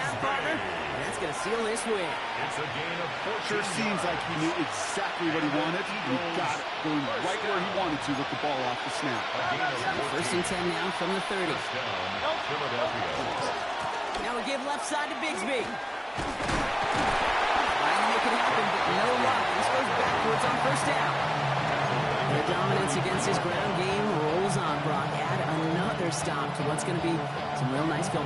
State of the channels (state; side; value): identical; both; correlation 1.00